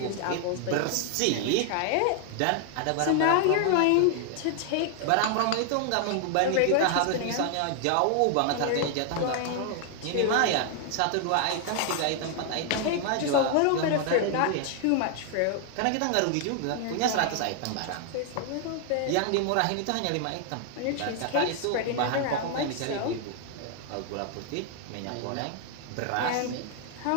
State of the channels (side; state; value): both; different; correlation 0.00